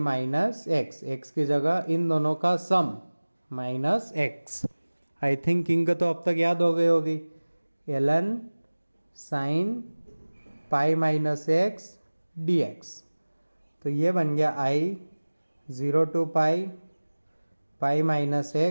एक्स, एक्स की जगह इन दोनों का sum minus x. I think king तो अब तक याद हो गई होगी, ln sine pi minus x d x. तो ये बन गया i 0 to pi pi minus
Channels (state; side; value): inverted; both; correlation -1.00